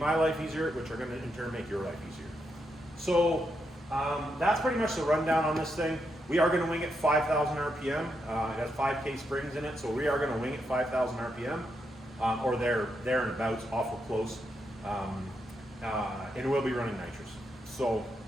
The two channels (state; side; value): normal; both; correlation 0.82